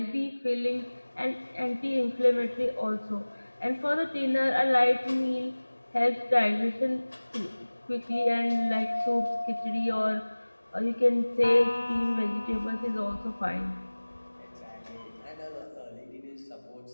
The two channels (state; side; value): inverted; both; correlation -1.00